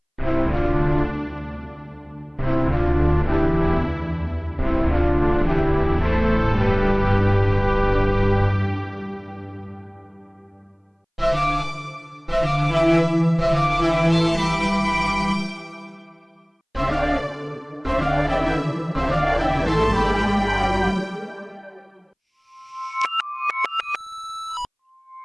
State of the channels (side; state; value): both; identical; correlation 1.00